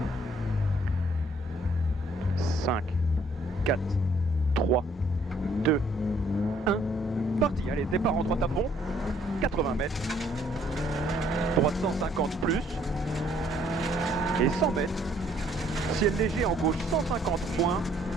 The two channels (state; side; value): normal; both; correlation 0.64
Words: « 5, 4, 3, 2, 1, parti. Allez, départ en droite à fond, 80 mètres, droite 150 plus, et 100 mètres, ciel léger en gauche 150 moins,